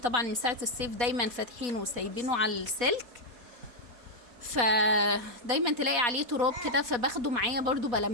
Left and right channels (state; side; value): late; left; 4.1 ms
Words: من ساعه الصيف دايما فاتحينه وسايبينه على السلك، فدايما تلاقي عليه تراب كده، فباخده معايا برضو